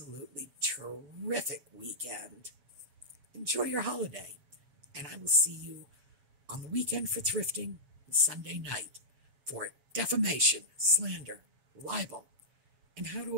terrific weekend. Enjoy your holiday. And I will see you on the weekend for thrifting and Sunday night for defamation, slander, libel, and how to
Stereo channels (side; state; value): left; late; 6.8 ms